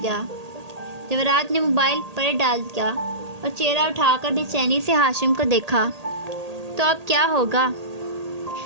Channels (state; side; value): late; left; 1.8 ms